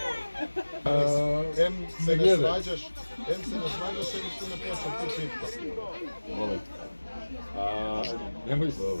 Em se ne svađaš, em se ne počne tu pitka. Molim. Nemoj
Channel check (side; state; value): both; inverted; correlation -1.00